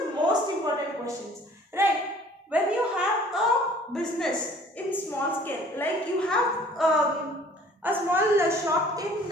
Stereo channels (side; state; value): both; normal; correlation 0.52